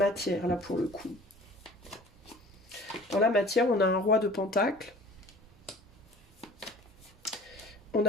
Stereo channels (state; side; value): normal; both; correlation 0.46